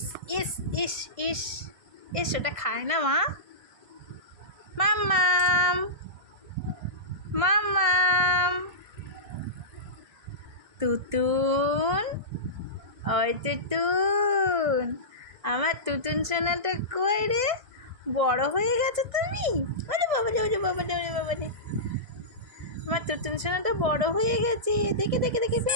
ইস ইস ইস ইস, ওটা খায় না মা। মাম্মাম মাম্মাম, তুতুন, ওই তুতুন, আমার তুতুন সোনাটা কই রে? বড় হয়ে গেছে তুমি? ওরে বাবা রে, ওরে বাবা রে, ওরে বাবা রে, আমার তুতুন সোনাটা বড় হয়ে গেছে। দেখে দেখে দেখে,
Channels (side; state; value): left; late; 1.6 ms